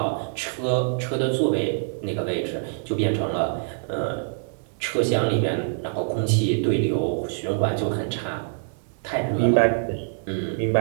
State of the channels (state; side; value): silent; left; 58 dB below the other